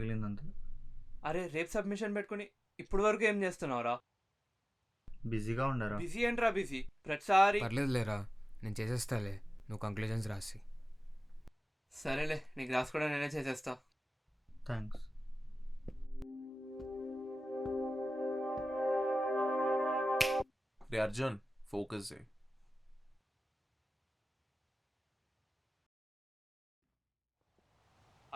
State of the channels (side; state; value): both; normal; correlation 0.96